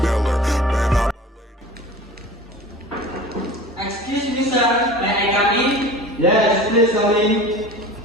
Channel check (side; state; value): both; normal; correlation 0.39